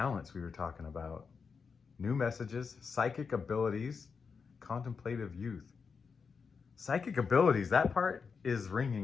we were talking about. New messages, psychic abilities, contemplative youth. Psychic abilities, that part is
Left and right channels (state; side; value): quieter; right; 5.5 dB